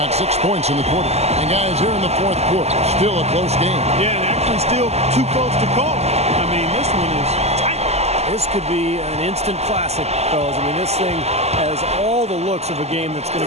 6 points in the quarter. And guys, here in the fourth quarter, still a close game. Yeah, and actually still too close to call. I mean, this one is tight. This could be an instant classic, fellas. I mean, this thing has all the looks of a game that's going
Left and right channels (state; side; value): late; left; 0.31 ms